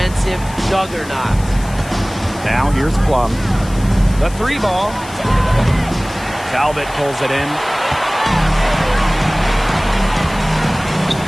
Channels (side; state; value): left; noise; hiss, 18 dB below the sound